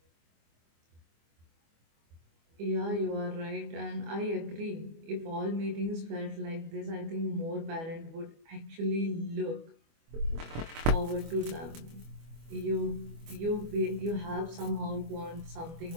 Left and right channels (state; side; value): late; left; 24 ms